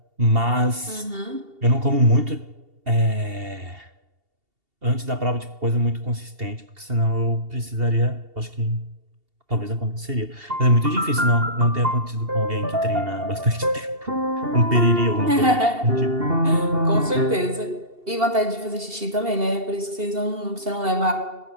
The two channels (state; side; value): late; left; 2.7 ms